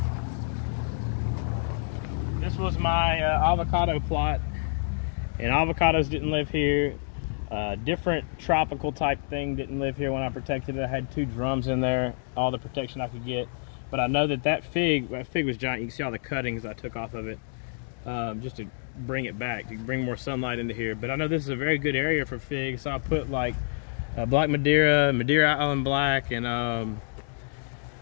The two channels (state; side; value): silent; right; digital silence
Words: This was my avocado plot, and avocados didn't live here. Different tropical type thing didn't live here when I protected it. I had 2 drums in there, all the protection I could get. But I know that fig was giant. You can see all the cuttings I took off of it. Just to bring it back, to bring more sunlight into here. But I know this is a very good area for figs, so I put like Black Madeira, Madeira Island Black, and